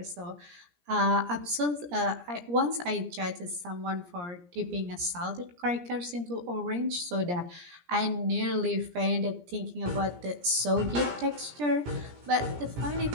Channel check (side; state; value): left; late; 17 ms